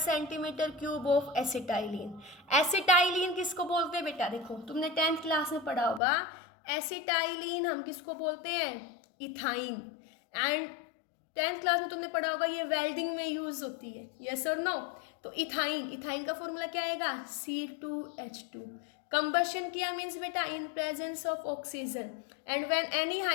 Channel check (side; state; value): right; drops out; at 6.0 s